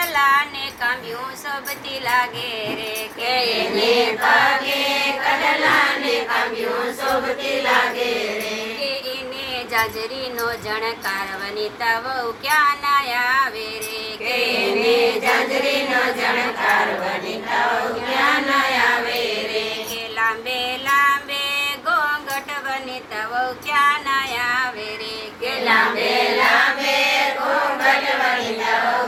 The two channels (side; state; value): both; identical; correlation 1.00